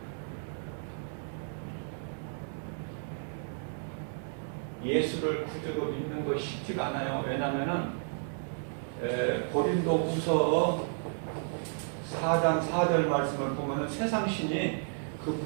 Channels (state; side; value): silent; left; digital silence